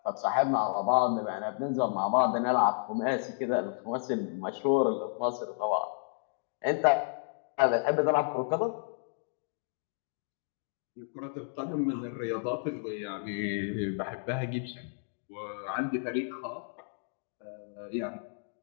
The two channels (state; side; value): silent; right; digital silence